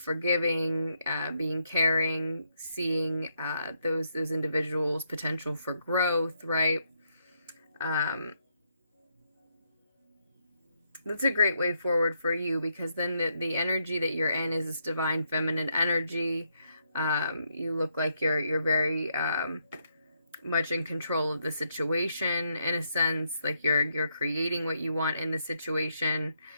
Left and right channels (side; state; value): both; inverted; correlation -0.78